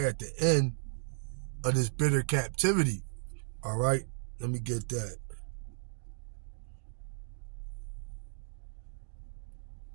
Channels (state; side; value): silent; left; digital silence